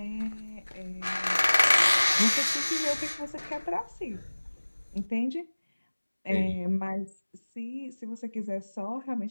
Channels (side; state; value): both; inverted; correlation -1.00